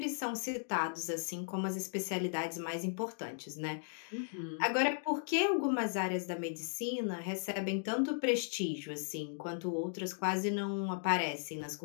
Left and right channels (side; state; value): right; silent; digital silence